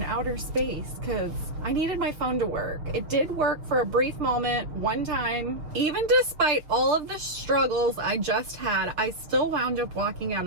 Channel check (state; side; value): late; left; 6.6 ms